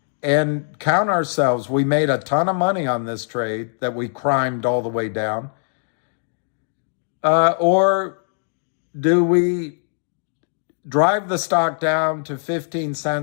and count ourselves? We made a ton of money on this trade that we crimed all the way down. Or do we drive the stock down to 15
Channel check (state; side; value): silent; right; digital silence